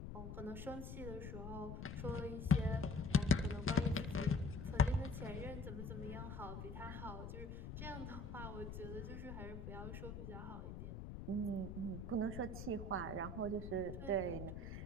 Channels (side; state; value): left; noise; rumble, 7 dB below the sound